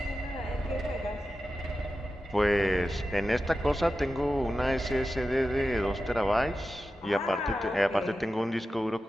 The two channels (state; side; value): normal; both; correlation 0.92